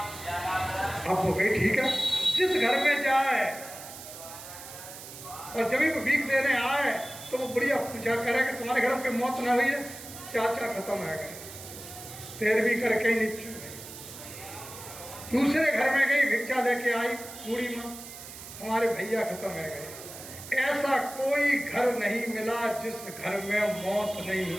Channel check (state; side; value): noise; right; hiss, 13 dB below the sound